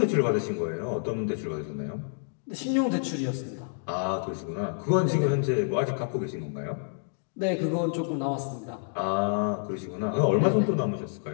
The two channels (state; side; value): silent; right; digital silence